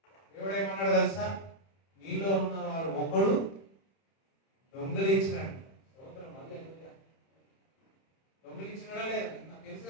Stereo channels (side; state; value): right; late; 31 ms